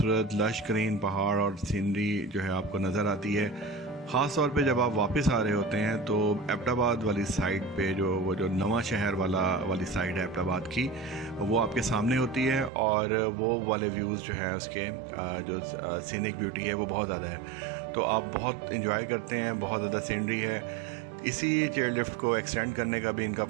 लश ग्रीन पहाड़ और सीनरी जो है आपको नज़र आती है। ख़ास तौर पे जब आप वापस आ रहे होते हैं तो एबटाबाद वाली साइड पे वो जो नवा शहर वाली साइड है एबटाबाद की, वो आपके सामने होती है और वो वाले व्यूज़ जो हैं उसके जो सीनिक ब्यूटी है वो बहुत ज़्यादा है। तो आप बहुत इंजॉय करते हैं, बहुत ज़्यादा सीनरी है। इसी चेयर लिफ्ट को एक्सटेंड करने का भी इनका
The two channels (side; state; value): left; drops out; at 12.7 s